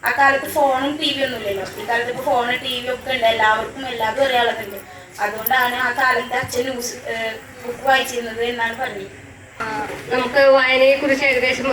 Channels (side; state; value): both; identical; correlation 1.00